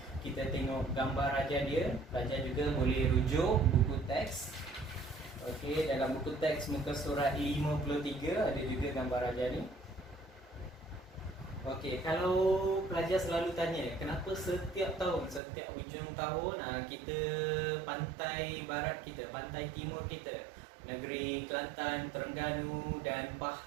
kita tengok gambar raja dia. Pelajar juga boleh rujuk buku teks. Okey, dalam buku teks muka surat 53 ada juga gambar raja ni. Okey, kalau pelajar selalu tanya kenapa setiap tahun, setiap hujung tahun kita pantai barat kita, pantai timur kita, negeri Kelantan, Terengganu dan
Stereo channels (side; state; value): left; drops out; at 15.4 s